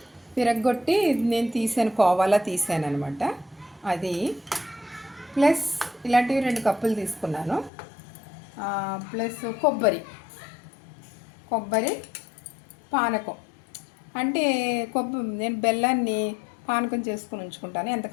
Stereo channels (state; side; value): drops out; right; at 7.7 s